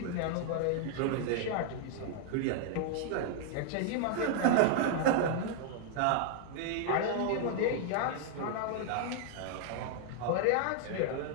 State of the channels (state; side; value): different; both; correlation -0.01